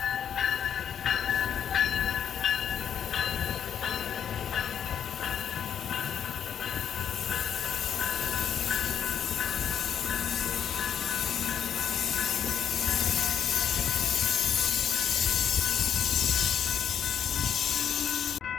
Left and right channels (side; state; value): right; quieter; 8.6 dB